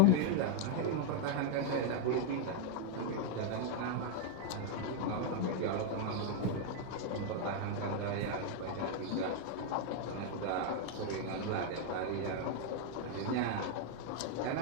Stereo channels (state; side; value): different; both; correlation 0.00